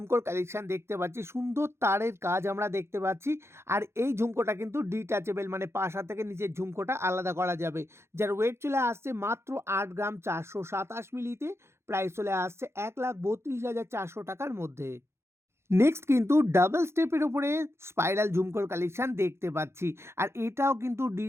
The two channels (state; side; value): late; left; 0.13 ms